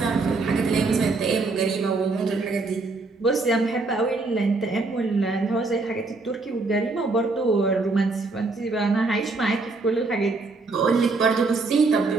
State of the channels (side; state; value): left; quieter; 3.7 dB